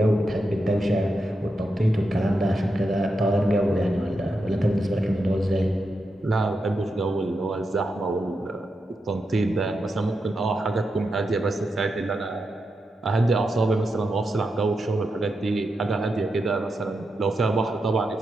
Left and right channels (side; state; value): both; normal; correlation 0.86